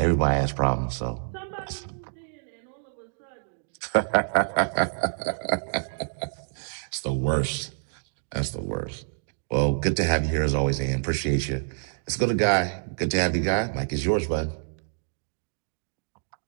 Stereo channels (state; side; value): silent; left; digital silence